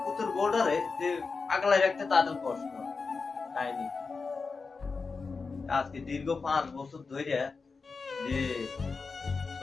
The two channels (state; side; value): quieter; right; 4.6 dB